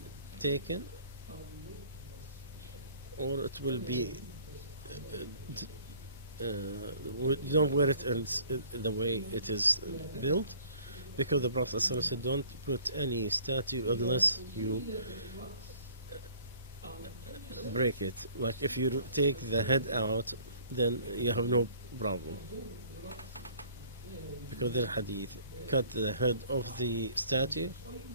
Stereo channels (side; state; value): both; inverted; correlation -0.54